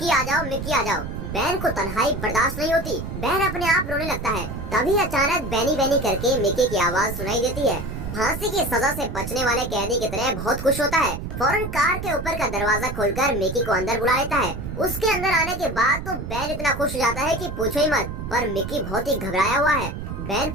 आ जाओ, मिक्की आ जाओ। बैन को तन्हाई बर्दाश्त नहीं होती, बैन अपने आप रोने लगता है। तभी अचानक बैनी बैनी करके मिक्की की आवाज सुनाई देती है। फांसी की सजा से बचने वाले कैदी की तरह बहुत खुश होता है। फौरन कार के ऊपर का दरवाजा खोलकर मिकी को अंदर बुला लेता है। उसके अंदर आने के बाद तो बैन इतना खुश हो जाता है कि पूछो ही मत, पर मिकी बहुत ही घबराया हुआ है। बैन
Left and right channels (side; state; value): right; noise; rumble, 7 dB below the sound